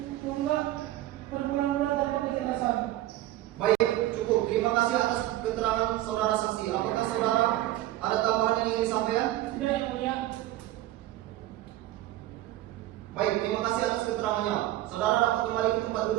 berbulan-bulan tanpa kejelasan. Baik, cukup. Terima kasih atas keterangan saudara saksi. Apakah saudara ada tambahan yang ingin disampaikan? Tidak yang mulia. Baik, terima kasih atas keterangannya. Saudara dapat kembali ke tempat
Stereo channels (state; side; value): quieter; left; 15.1 dB